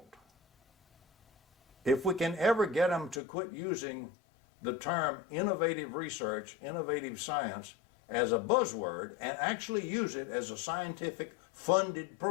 If we can ever get them to quit using the term innovative research, innovative science as a buzzword and actually use it as a scientific funded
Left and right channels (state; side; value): drops out; right; at 3.2 s